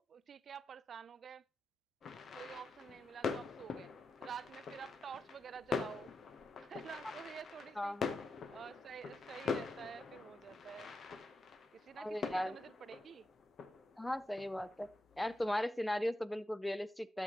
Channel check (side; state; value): both; normal; correlation 0.87